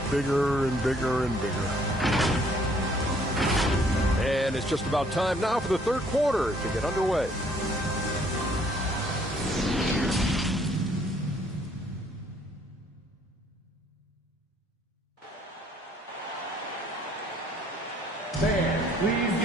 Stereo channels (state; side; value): normal; both; correlation 0.62